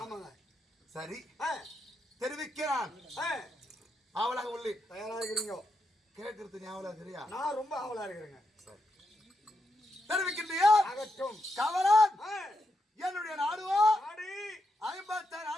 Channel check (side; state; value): both; normal; correlation 0.84